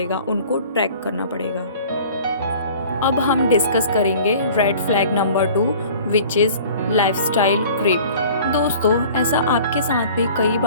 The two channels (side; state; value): both; inverted; correlation -0.47